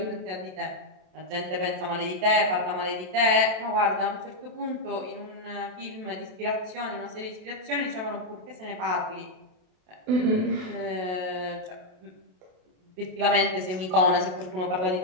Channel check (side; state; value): left; late; 27 ms